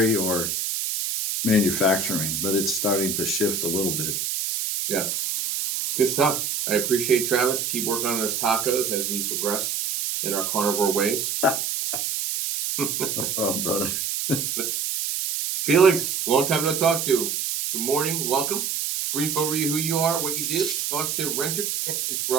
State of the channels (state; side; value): noise; right; hiss, 1 dB below the sound